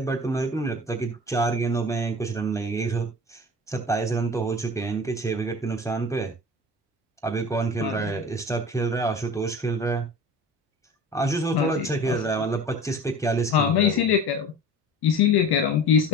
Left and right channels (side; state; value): both; normal; correlation 0.38